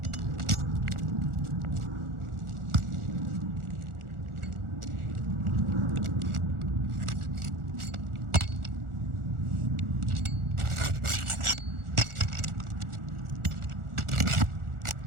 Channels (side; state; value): left; late; 1.4 ms